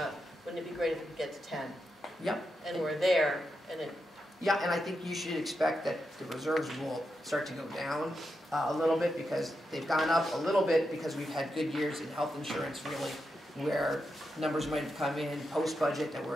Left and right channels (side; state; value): both; normal; correlation 0.86